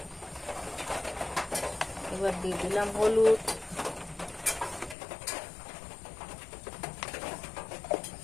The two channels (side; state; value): right; drops out; at 5.0 s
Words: এবার দিয়ে দিলাম হলুদ,